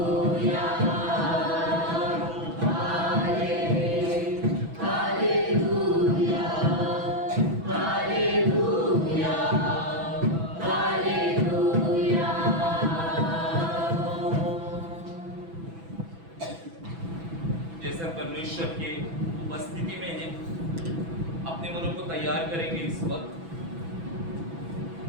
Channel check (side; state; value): left; late; 6.0 ms